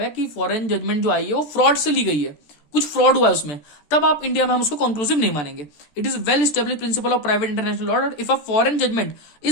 है कि फॉरेन जजमेंट जो आई है वो फ्रॉड से ली गई है, कुछ फ्रॉड हुआ है उसमें, तब आप इंडिया में हम उसको कंक्लूसिव नहीं मानेंगे। It is well establish principle of private international law, if a foreign judgment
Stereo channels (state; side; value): late; right; 13 ms